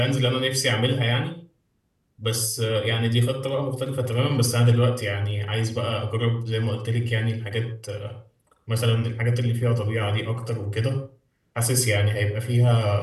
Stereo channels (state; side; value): identical; both; correlation 1.00